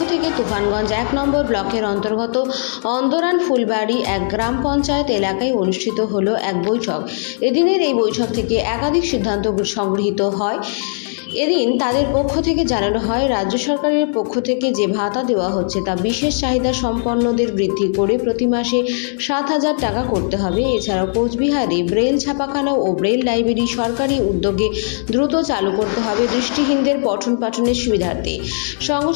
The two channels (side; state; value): right; silent; digital silence